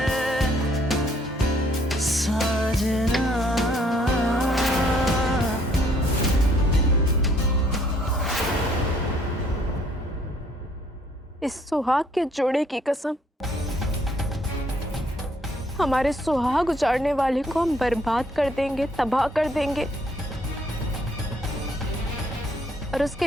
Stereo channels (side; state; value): both; normal; correlation 0.64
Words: साजना। इस सुहाग के जोड़े की कसम, हमारे सुहाग उजाड़ने वाले को हम बर्बाद कर देंगे, तबाह कर देंगे। और